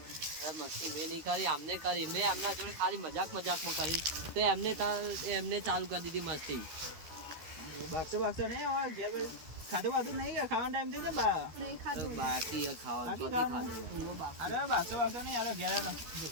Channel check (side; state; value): left; late; 13 ms